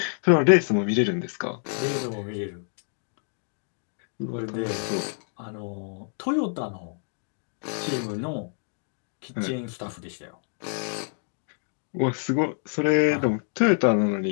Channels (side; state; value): right; silent; digital silence